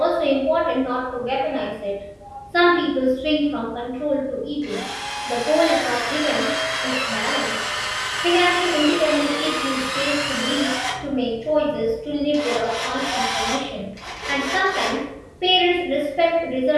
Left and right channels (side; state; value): both; identical; correlation 1.00